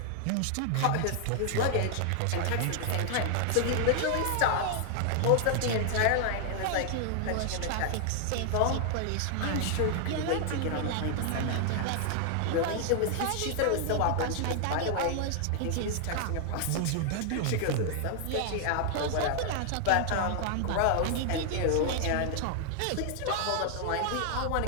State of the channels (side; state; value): both; different; correlation 0.00